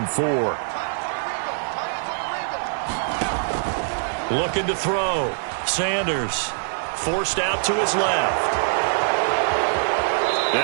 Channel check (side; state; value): left; silent; 63 dB below the other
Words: 4. Looking to throw. Sanders forced out to his left.